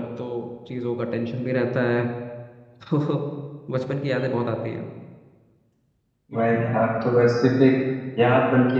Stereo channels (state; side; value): identical; both; correlation 1.00